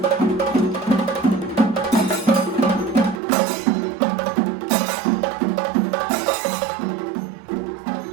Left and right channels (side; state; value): left; drops out; at 3.2 s